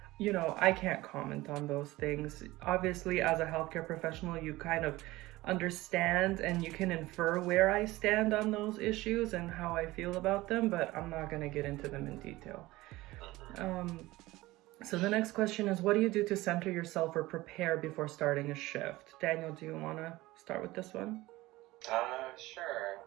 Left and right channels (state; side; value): quieter; left; 18.9 dB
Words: You know, I can't comment on those things. Obviously, as a healthcare professional, you kind of understand and you can infer where I stand on those issues and how I feel about them, but I'm not going to get into them in detail. So the next question is, what do you do to center yourself or prepare before starting a shift? Daniel, do you want to start with this one? Sure.